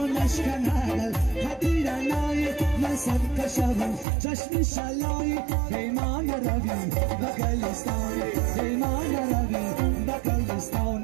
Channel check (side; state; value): left; drops out; at 4.0 s